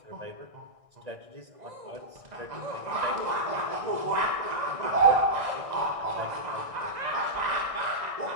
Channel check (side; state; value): left; late; 1.6 ms